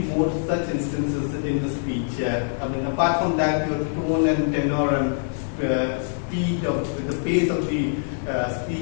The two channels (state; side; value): silent; right; digital silence